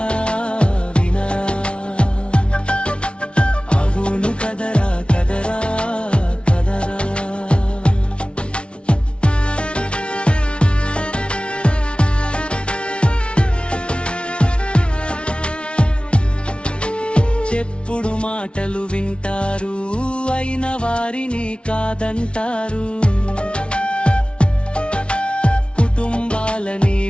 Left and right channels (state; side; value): late; right; 0.059 ms